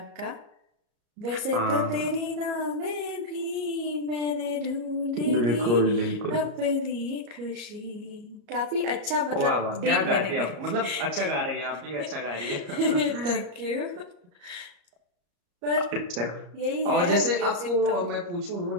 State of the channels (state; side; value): late; left; 34 ms